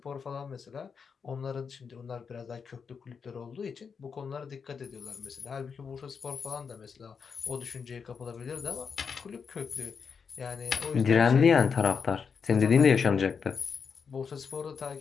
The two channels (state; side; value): quieter; right; 6.0 dB